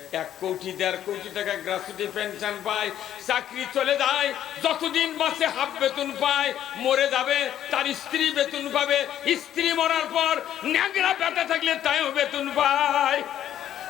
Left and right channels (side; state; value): right; quieter; 11.0 dB